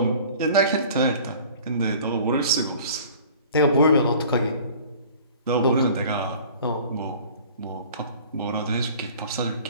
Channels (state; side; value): inverted; both; correlation -0.47